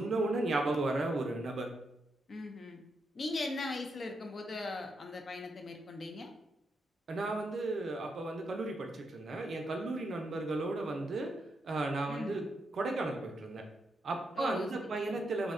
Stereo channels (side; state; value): both; normal; correlation 0.82